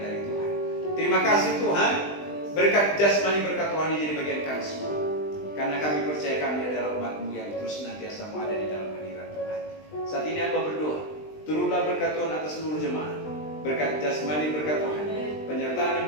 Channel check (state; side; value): late; right; 20 ms